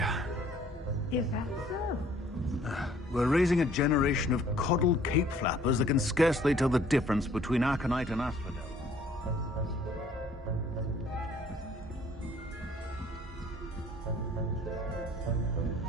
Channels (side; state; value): both; normal; correlation 0.57